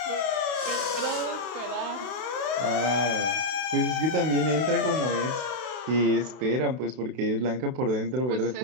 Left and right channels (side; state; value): left; late; 32 ms